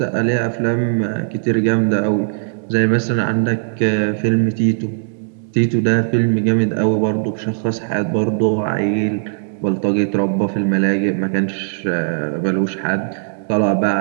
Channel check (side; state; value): left; silent; digital silence